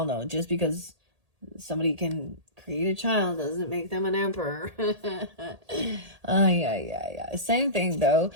know, just because somebody can create a child doesn't make them an emperor. Yeah. Same thing though.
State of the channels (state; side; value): late; left; 1.8 ms